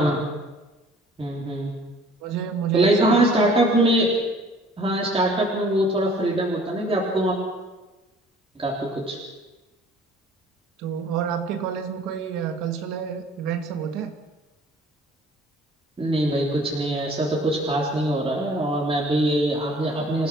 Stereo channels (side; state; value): both; normal; correlation 0.53